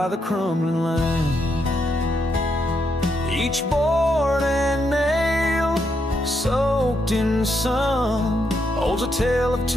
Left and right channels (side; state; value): both; normal; correlation 0.79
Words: the crumbling line. Each board and nail soaked in sun holds a tale of